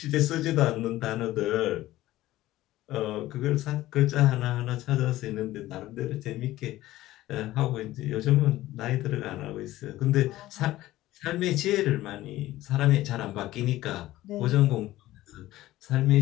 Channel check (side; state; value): right; quieter; 15.9 dB